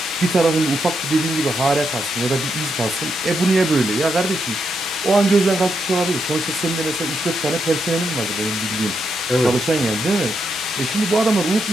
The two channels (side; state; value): both; normal; correlation 0.81